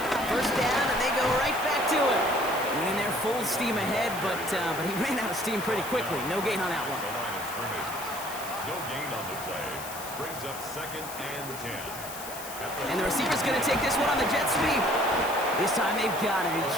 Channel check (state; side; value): noise; left; hiss, 11 dB below the sound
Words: 1st down, and they go right back to him. Winning their full steam ahead, but he ran out of steam pretty quickly. No gain on that one. The line of scrimmage. No gain on the play. Brings up 2nd and 10. And the receiver's going to take this one on the jet sweep. This time they've got him.